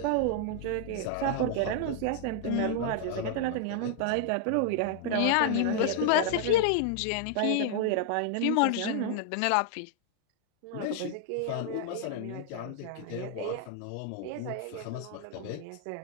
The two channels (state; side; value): different; both; correlation 0.00